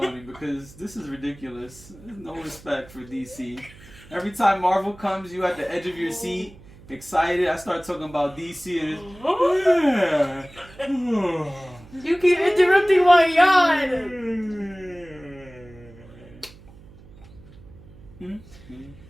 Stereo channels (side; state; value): right; noise; hum, 21 dB below the sound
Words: because this is ridiculous. There's no respect for DC. Every time Marvel comes, you at the edge of your seat, excited. I start talking about DC and it's... You keep interrupting my yawn.